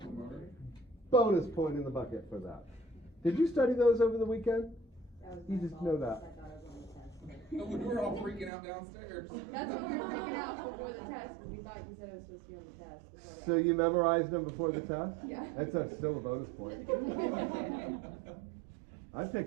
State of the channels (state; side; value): drops out; left; at 8.5 s